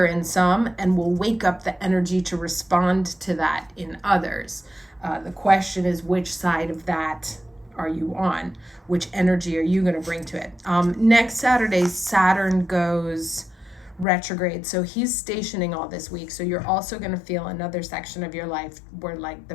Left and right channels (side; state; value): right; drops out; at 14.1 s